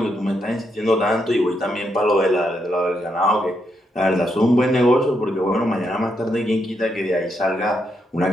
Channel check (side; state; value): both; normal; correlation 0.80